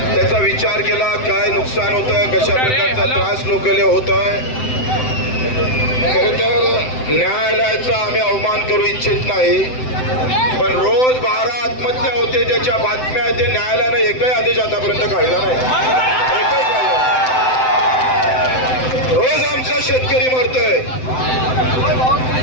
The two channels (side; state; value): right; late; 7.8 ms